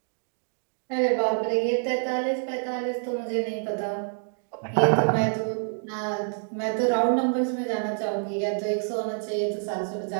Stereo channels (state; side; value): silent; left; digital silence